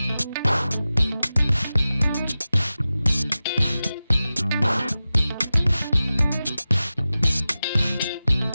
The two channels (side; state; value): both; inverted; correlation -0.95